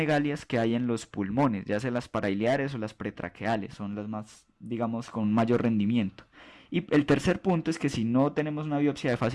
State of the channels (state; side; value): identical; both; correlation 1.00